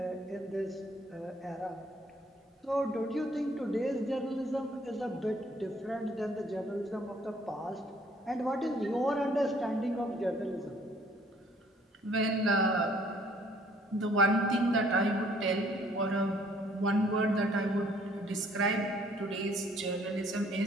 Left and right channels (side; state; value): both; normal; correlation 0.61